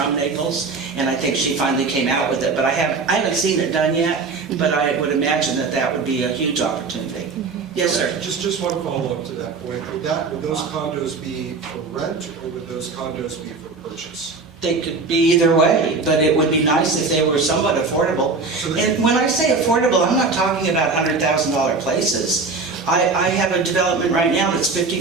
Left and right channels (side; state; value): left; quieter; 4.2 dB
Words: Naples, and I think she finally came out with it. But I haven't seen it done yet, but I would imagine that would be a huge opportunity. Yes, sir. Just one follow-up to that point. Would those condos be for rent, or would those condos be for purchase? They could be either way, but it would be nice if they were somewhat affordable. And when I say affordable, I'm not talking about $100,000 places. I have a development right now that's